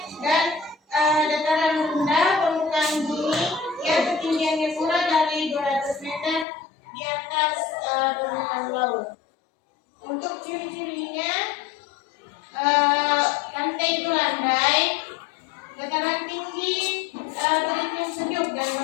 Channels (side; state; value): right; drops out; at 6.5 s